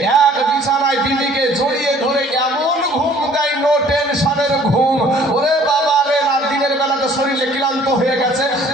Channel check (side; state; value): both; normal; correlation 0.55